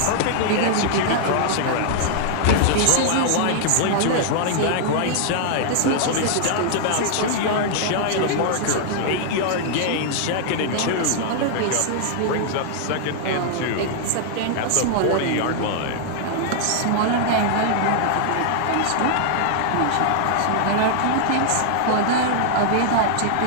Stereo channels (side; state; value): both; different; correlation -0.01